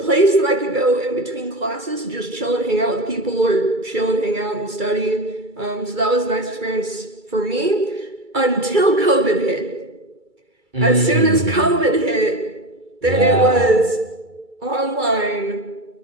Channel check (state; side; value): late; left; 2.3 ms